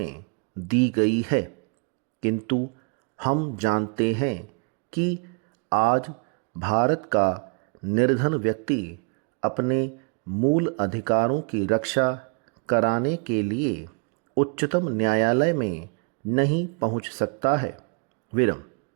दी गई है। किंतु हम जानते हैं कि आज भारत का निर्धन व्यक्ति अपने मूल अधिकारों की रक्षा कराने के लिए उच्चतम न्यायालय में नहीं पहुंच सकता है। विरम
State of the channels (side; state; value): left; quieter; 39.2 dB